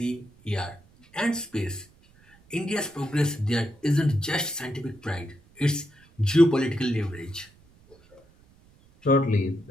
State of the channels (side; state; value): right; noise; rumble, 29 dB below the sound